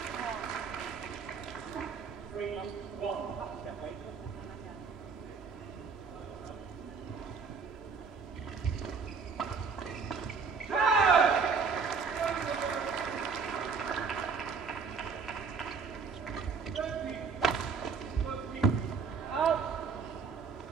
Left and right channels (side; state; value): left; quieter; 5.4 dB